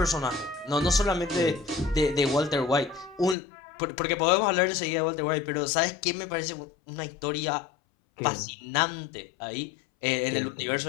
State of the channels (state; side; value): drops out; right; at 3.4 s